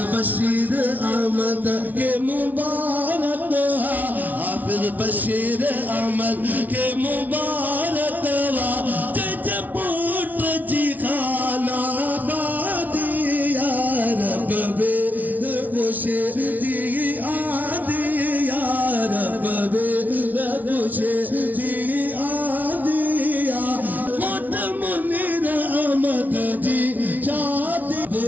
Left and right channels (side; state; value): left; late; 0.078 ms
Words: बशीर अहमद के मुबारक हाफिज बशीर अहमद के मुबारक जजपुट जी खाना बादी या रब वे खुशी जी आदि या रब वे खुशी जी आदि या मोट मुनीर अहमद जी शादी